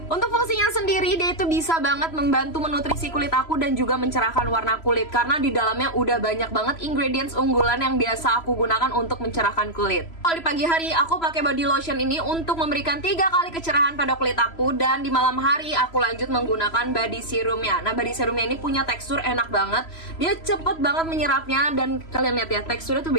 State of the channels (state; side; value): late; right; 3.0 ms